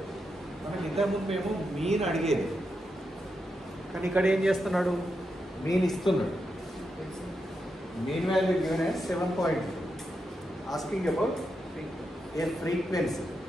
మనకి ఇంతకుముందు మేము mean అడిగేది, కానీ ఇక్కడ ఏం చేస్తున్నాడు, మీన్ ఇస్తున్నాడు. Mean value given as 7.2. Asking about a frequency.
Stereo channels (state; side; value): normal; both; correlation 0.85